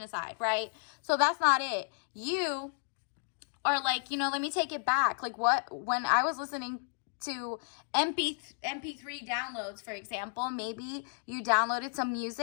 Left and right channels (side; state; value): right; silent; digital silence